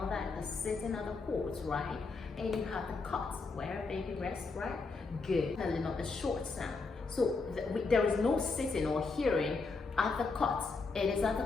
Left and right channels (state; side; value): quieter; right; 4.2 dB